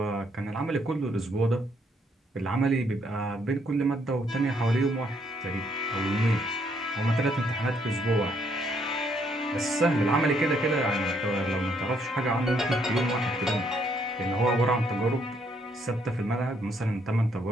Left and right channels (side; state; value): both; normal; correlation 0.70